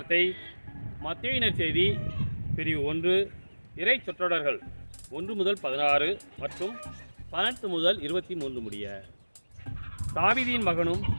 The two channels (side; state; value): both; inverted; correlation -1.00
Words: மத்தேயு நற்செய்தி பிரிவு 1 இறை சொற்றொடர்கள் 1 முதல் 16 மற்றும் 18 முதல் 23 முடிய. தாவீதின் மகனும்